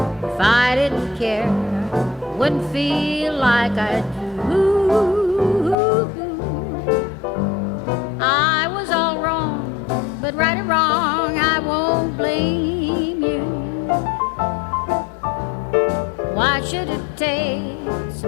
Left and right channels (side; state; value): right; drops out; at 5.8 s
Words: If I didn't care, wouldn't feel like I do. I was all wrong, but right or wrong, I won't blame you. Why should it take